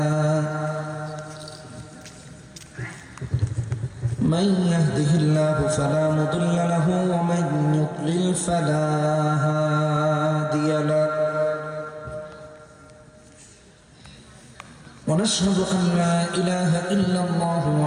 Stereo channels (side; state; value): both; identical; correlation 1.00